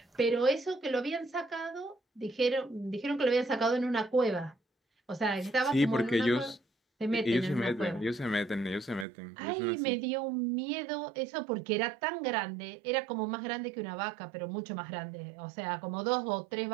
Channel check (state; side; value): drops out; left; at 9.1 s